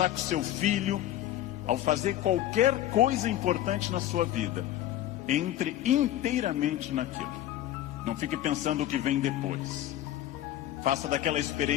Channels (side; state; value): right; quieter; 13.1 dB